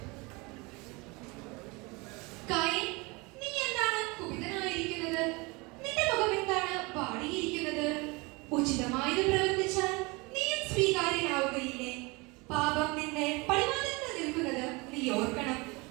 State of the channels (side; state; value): left; quieter; 26.3 dB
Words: കായീൻ, നീ എന്താണ് കുപിതനായിരിക്കുന്നത്? നിന്റെ മുഖം എന്താണ് വാടിയിരിക്കുന്നത്? ഉചിതമായത് പ്രവർത്തിച്ചാൽ നീയും സ്വീകാര്യനാവുകയില്ലേ? പാപം നിന്നെ പടിവാതിൽക്കൽ നിൽക്കുന്നത് നീ ഓർക്കണം.